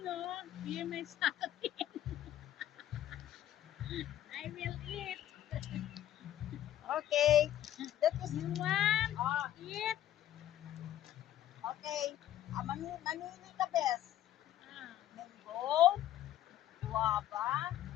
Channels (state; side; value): quieter; right; 12.4 dB